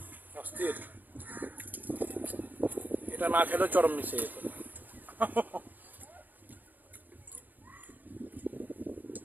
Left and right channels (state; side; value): late; left; 0.085 ms